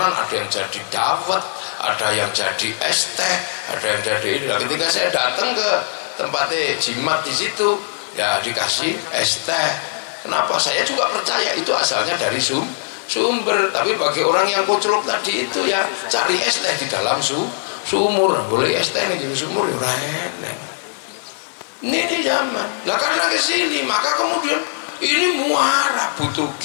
ada yang jadi dawet, ada yang jadi es teh, ada yang jadi ini. Nah, ketika saya datang ke tempatnya jimat di situ, ya dikasih es teh. Kenapa? Saya juga percaya itu asalnya dari sumber. Tapi bagi orang yang koclok tadi itu ya cari es teh di dalam sumur. Boleh es teh di sumur ya enak. Ini zaman. Nah karena kesini maka kemudian ini muara, butuh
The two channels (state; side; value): silent; right; digital silence